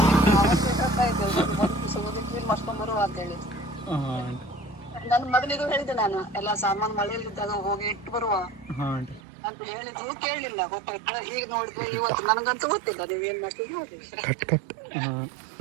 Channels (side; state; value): left; drops out; at 9.2 s